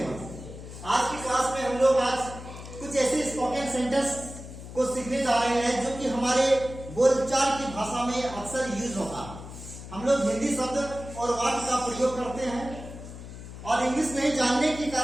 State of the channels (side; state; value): left; noise; hum, 12 dB below the sound